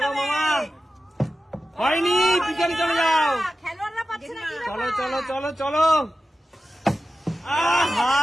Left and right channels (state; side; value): normal; both; correlation 0.93